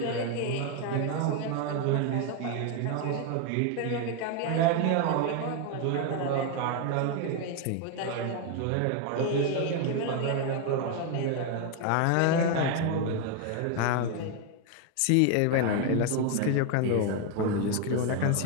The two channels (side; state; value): both; different; correlation 0.01